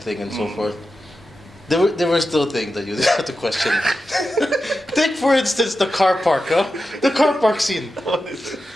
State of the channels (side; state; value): both; normal; correlation 0.91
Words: and so forth. There were still things that you have to question. Take for instance the car park, huh? The car park scene.